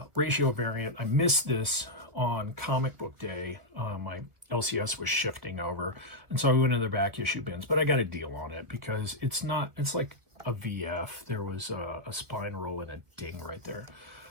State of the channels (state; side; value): late; left; 1.3 ms